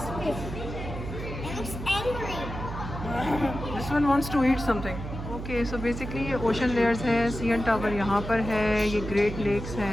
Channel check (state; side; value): noise; right; hum, 7 dB below the sound